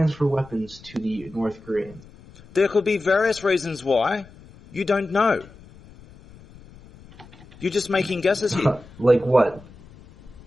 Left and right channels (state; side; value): noise; left; rumble, 22 dB below the sound